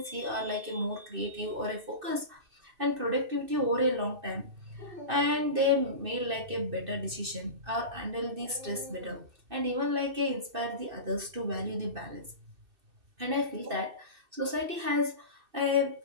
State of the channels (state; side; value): late; left; 2.7 ms